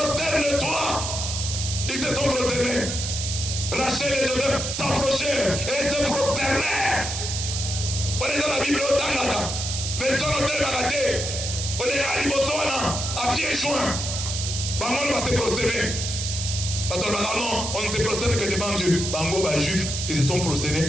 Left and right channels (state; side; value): noise; right; hiss, 3 dB below the sound